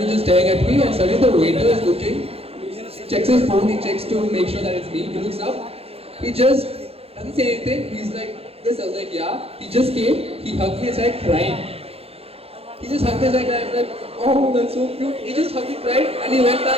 was just staring at me and suddenly the waiter is looking, he checks his phone, he checks to make sure that it's me, he looks up, he just doesn't say anything, he's like this, I was like yeah, he just came, he hugged me and started crying. He just hugged me and I was like, oh that's so cute, he just hugged me, cried and he went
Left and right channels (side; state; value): left; late; 0.29 ms